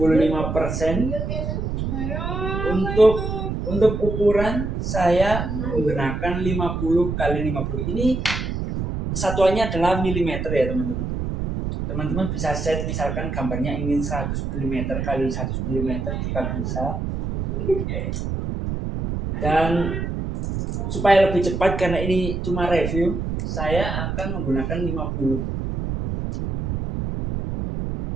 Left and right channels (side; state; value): right; noise; rumble, 3 dB below the sound